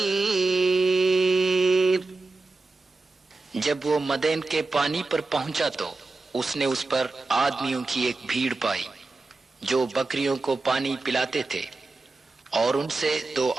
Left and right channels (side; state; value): left; quieter; 3.5 dB